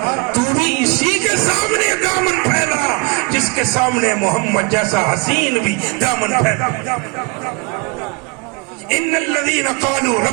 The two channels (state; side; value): quieter; left; 29.1 dB